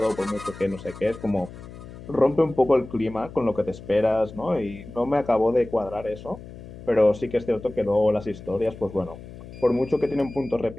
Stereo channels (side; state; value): left; noise; hum, 15 dB below the sound